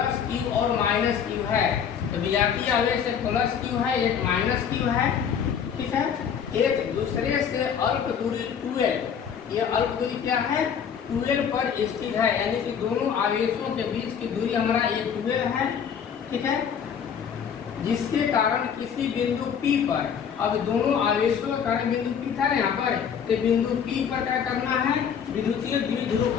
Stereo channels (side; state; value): right; quieter; 7.6 dB